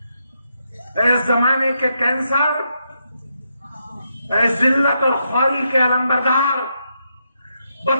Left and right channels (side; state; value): both; inverted; correlation -0.81